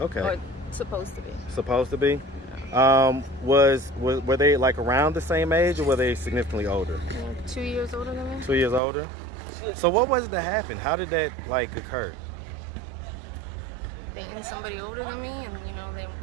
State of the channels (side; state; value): left; drops out; at 8.8 s